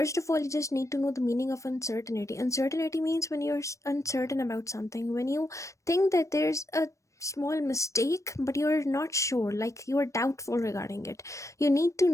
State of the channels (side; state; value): right; late; 0.15 ms